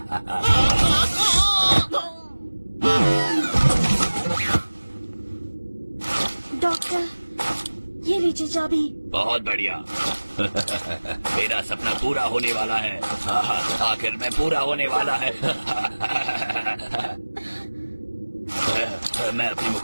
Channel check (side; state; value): both; inverted; correlation -1.00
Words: डॉक्टर, ये लीजिए चाबी। बहुत बढ़िया। मेरा सपना पूरा होने वाला है। आखिर में पूरा होने वाला है। मैं अपने